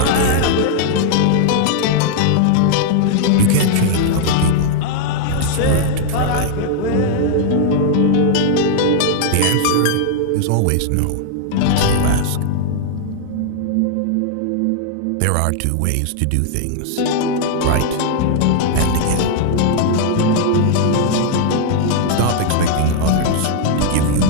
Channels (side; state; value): both; different; correlation -0.01